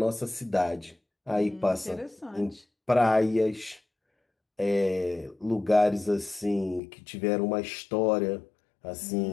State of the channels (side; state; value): right; drops out; at 6.8 s